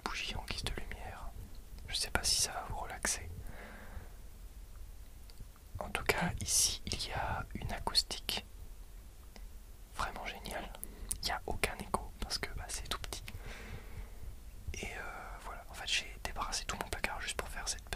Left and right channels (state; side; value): identical; both; correlation 1.00